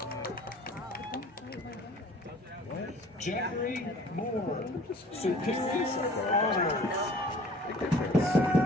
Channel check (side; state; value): both; normal; correlation 0.49